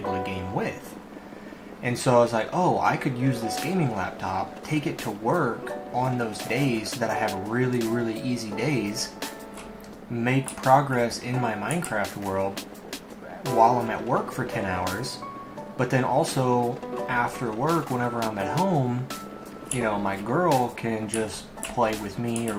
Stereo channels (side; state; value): both; identical; correlation 1.00